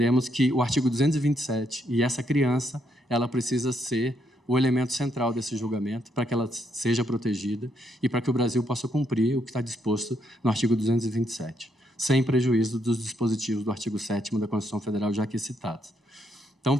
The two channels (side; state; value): both; normal; correlation 0.75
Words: que o artigo 227 e essa criança, ela precisa ser o elemento central desse julgamento para que ela seja protegida e para que o Brasil possa cumprir o que está disposto no artigo 227, sem prejuízo dos dispositivos do artigo 7º da Constituição Federal já aqui citados. Então,